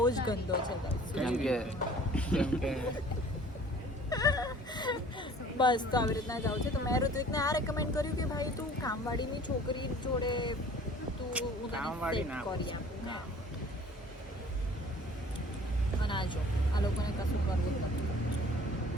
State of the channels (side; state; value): both; normal; correlation 0.50